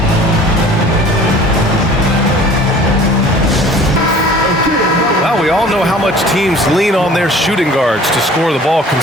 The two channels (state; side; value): normal; both; correlation 0.48